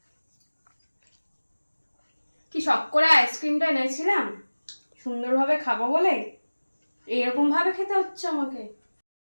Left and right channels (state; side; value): inverted; both; correlation -1.00